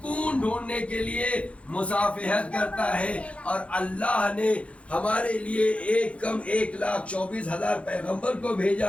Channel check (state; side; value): late; right; 0.062 ms